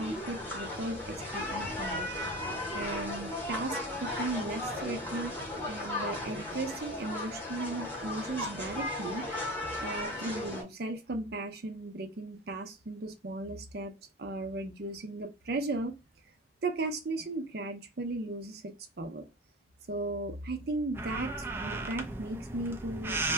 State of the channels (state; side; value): normal; both; correlation 0.31